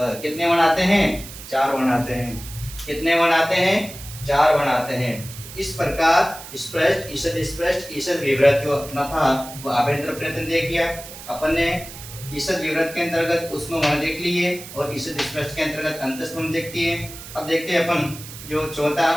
कितने वर्ण आते हैं, 4 वर्ण आते हैं। कितने वर्ण आते हैं, 4 वर्ण आते हैं। इस प्रकार स्पष्ट, ईषद स्पष्ट, ईषद विवृत जो अपना था वो आभ्यंतर प्रयत्न देख लिया अपन ने। ईषद विवृत के अंतर्गत ऊष्म वर्ण देख लिए और ईषद स्पष्ट के अंतर्गत अंतस्थ वर्ण देखती है। अब देखते हैं अपन जो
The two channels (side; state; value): right; noise; hiss, 14 dB below the sound